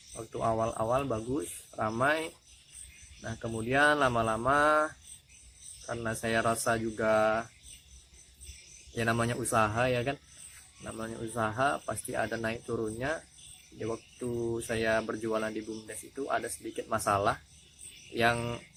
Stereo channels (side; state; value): both; identical; correlation 1.00